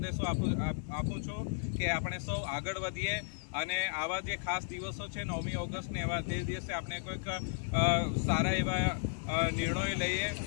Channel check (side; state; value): right; silent; digital silence